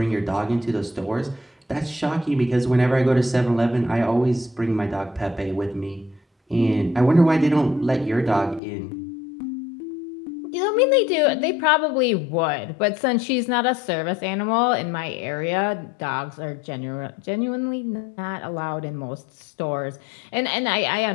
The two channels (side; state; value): right; drops out; at 8.6 s